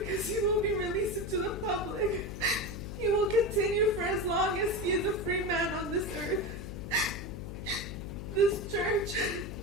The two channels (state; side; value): noise; left; hum, 8 dB below the sound